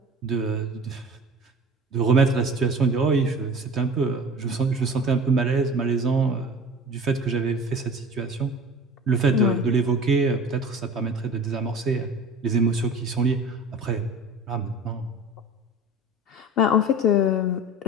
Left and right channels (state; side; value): normal; both; correlation 0.39